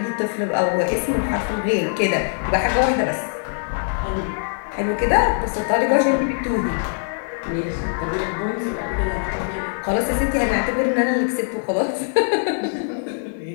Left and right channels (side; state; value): right; silent; digital silence